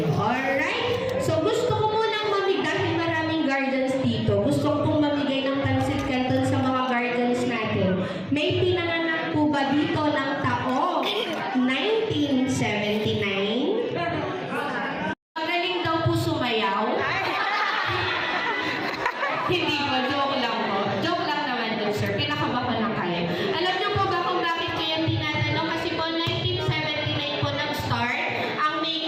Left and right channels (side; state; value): both; identical; correlation 1.00